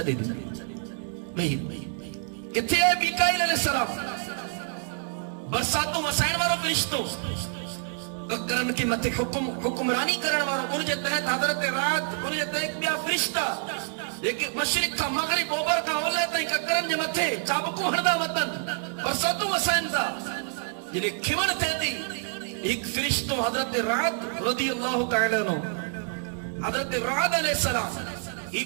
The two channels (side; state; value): left; silent; digital silence